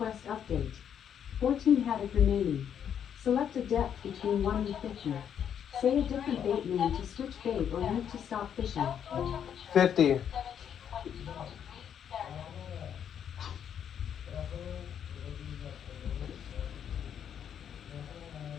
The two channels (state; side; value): quieter; right; 8.7 dB